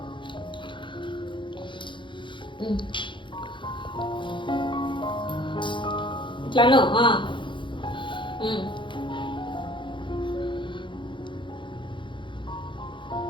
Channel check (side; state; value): right; late; 0.23 ms